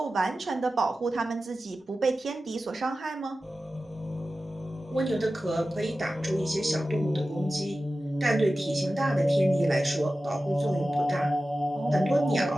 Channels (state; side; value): normal; both; correlation 0.94